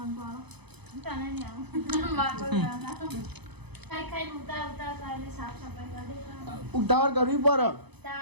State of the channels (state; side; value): late; left; 0.98 ms